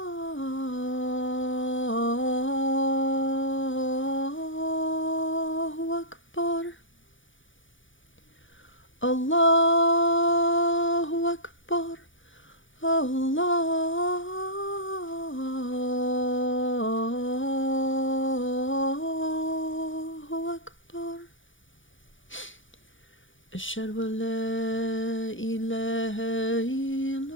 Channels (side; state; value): right; late; 0.56 ms